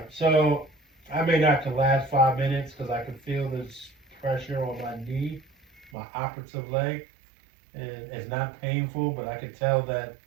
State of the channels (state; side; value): drops out; left; at 5.9 s